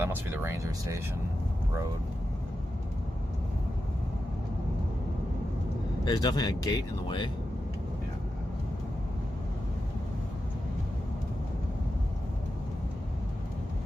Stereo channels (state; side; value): normal; both; correlation 0.90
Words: must be the ranger station road. There's definitely a gate in the way. Yeah.